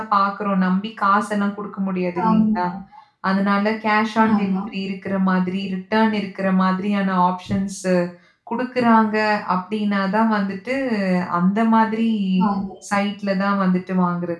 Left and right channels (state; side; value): identical; both; correlation 1.00